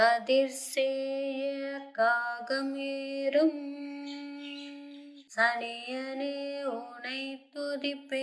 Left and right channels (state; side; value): identical; both; correlation 1.00